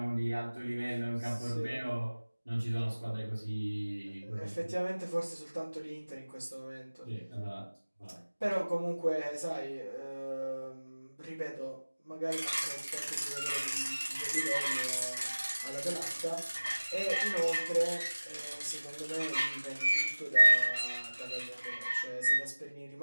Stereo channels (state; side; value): inverted; both; correlation -1.00